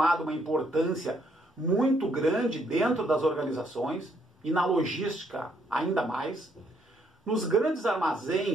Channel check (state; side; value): normal; both; correlation 0.71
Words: uma importância muito grande dentro das organizações, e na logística ainda mais. Nos grandes